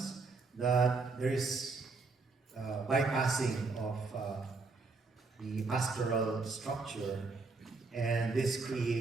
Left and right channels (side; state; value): left; quieter; 4.0 dB